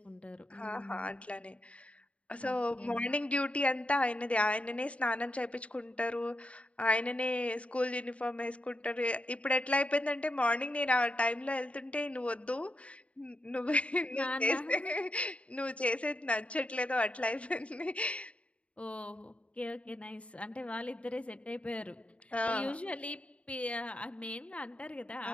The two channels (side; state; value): right; late; 0.063 ms